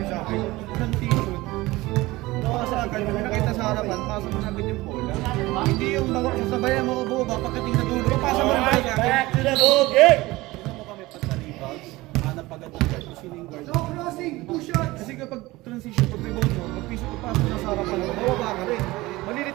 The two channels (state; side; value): quieter; left; 19.8 dB